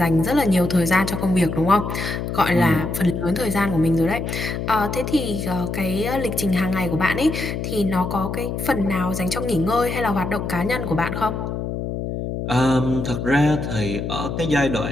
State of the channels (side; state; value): left; noise; hum, 4 dB below the sound